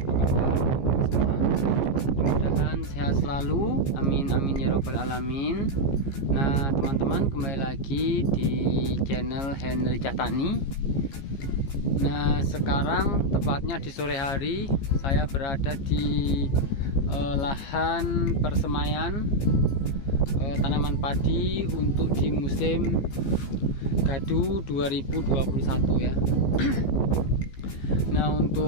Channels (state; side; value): late; right; 15 ms